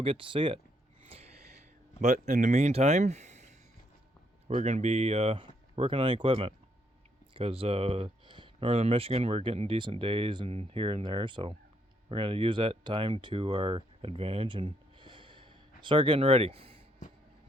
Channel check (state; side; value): normal; both; correlation 0.73